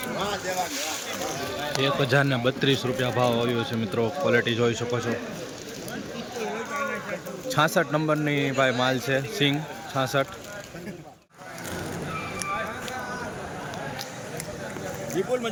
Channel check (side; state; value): both; identical; correlation 1.00